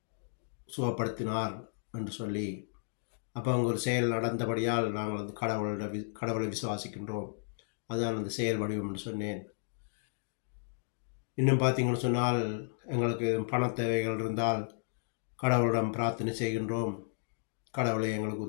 சுகப்படுத்தினார் என்று சொல்லி. அப்போ அங்கே ஒரு செயல் நடந்தபடியால் நாங்கள் அந்த கடவுளை விசுவாசிக்கின்றோம். அதுதான் அந்த செயல் வடிவம் என்று சொன்னேன். இன்னும் பார்த்தீங்கன்னு சொன்னால், எங்களுக்கு பண தேவைகள் இருந்தால் கடவுளிடம் பிரார்த்தனை செய்கின்றோம், கடவுளை எங்களுக்கு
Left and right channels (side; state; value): right; silent; digital silence